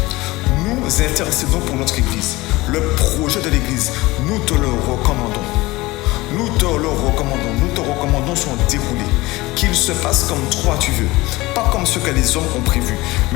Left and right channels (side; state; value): right; quieter; 20.5 dB